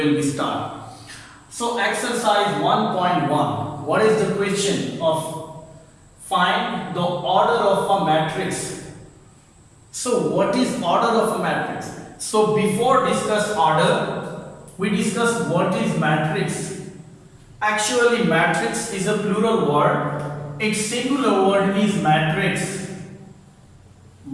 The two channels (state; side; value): identical; both; correlation 1.00